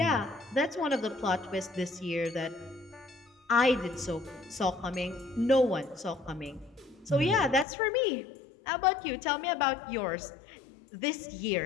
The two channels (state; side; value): drops out; right; at 7.7 s